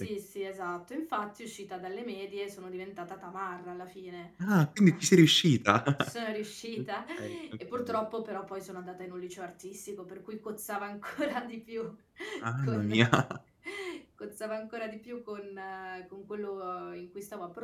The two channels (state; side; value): identical; both; correlation 1.00